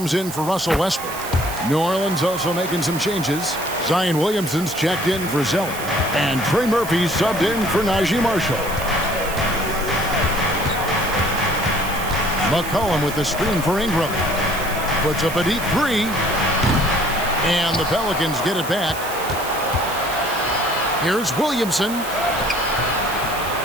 in for Russell Westbrook. New Orleans also making some changes. Zion Williamson's checked in for Zeller. And Trey Murphy's subbed in for Najee Marshall. McCollum with the screen for Ingram. Puts up a deep three. And the Pelicans get it back. Here's Williamson.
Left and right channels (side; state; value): right; noise; hiss, 11 dB below the sound